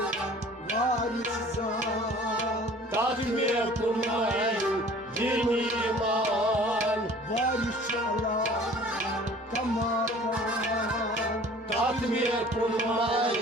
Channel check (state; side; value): normal; both; correlation 0.49